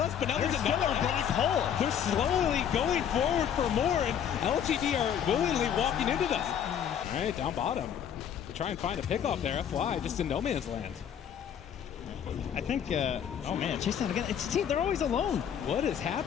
but now there's another black hole. They're slowly going forward for more, and LGD are willingly walking into them. All right, down bottom. Try and find a pickoff there. FY just in no man's land. I think, oh man, chase down again. They're always alone. What is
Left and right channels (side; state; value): right; quieter; 8.8 dB